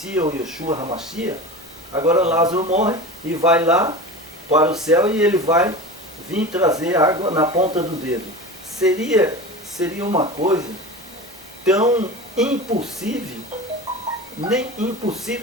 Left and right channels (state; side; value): normal; both; correlation 0.30